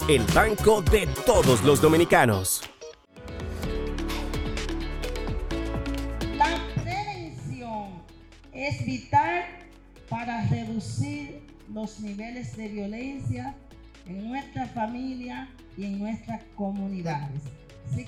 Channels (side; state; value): both; identical; correlation 1.00